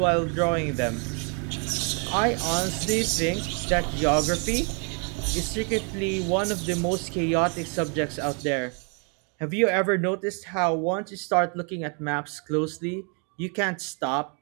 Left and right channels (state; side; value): quieter; left; 38.2 dB